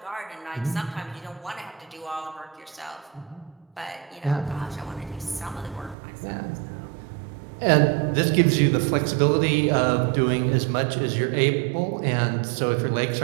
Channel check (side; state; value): left; drops out; at 6.0 s